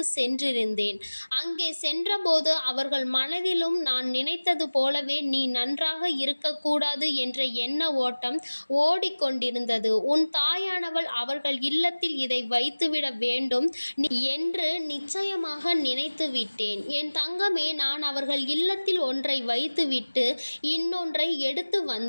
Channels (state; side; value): inverted; both; correlation -1.00